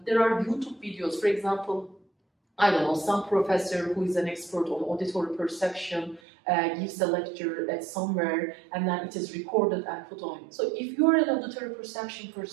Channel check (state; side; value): drops out; left; at 6.2 s